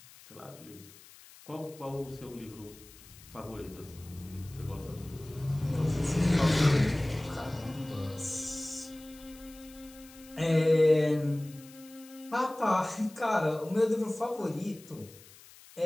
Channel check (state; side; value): noise; left; hiss, 21 dB below the sound